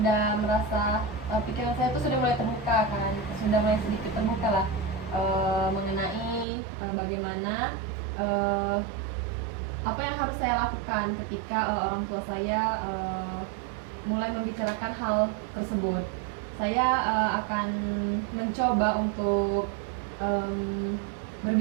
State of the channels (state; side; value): drops out; left; at 6.5 s